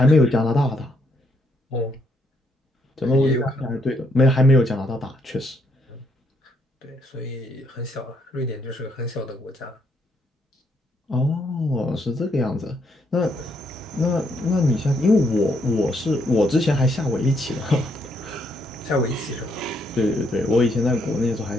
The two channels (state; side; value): normal; both; correlation 0.73